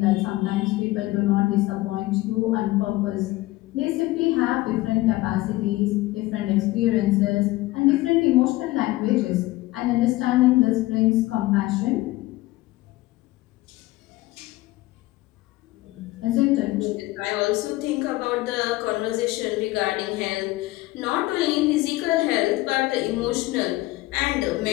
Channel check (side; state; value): right; quieter; 18.7 dB